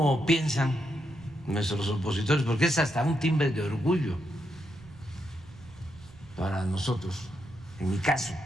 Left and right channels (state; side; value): noise; right; rumble, 21 dB below the sound